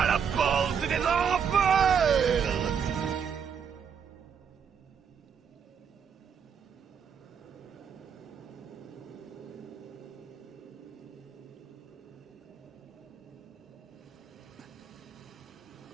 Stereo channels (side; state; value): left; quieter; 7.1 dB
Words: la porte des enfers.